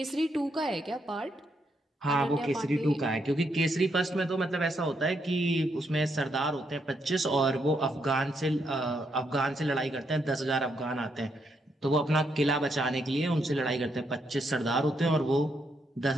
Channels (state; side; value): normal; both; correlation 0.77